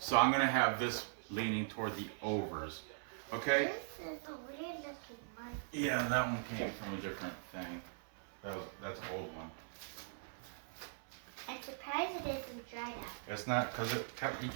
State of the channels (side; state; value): left; silent; 51 dB below the other